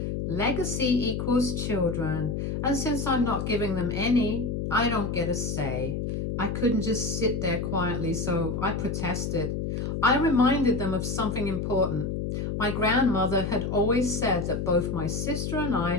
legacy equals children, and since I'm not giving them any, I don't get a say. I couldn't just sit there quietly, so I protested. I reminded them of something important. My grandmother had always said that both my sister and I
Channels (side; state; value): left; noise; hum, 2 dB below the sound